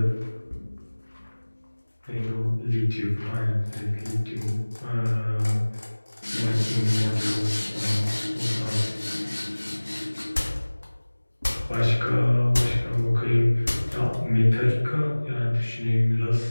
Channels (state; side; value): inverted; both; correlation -1.00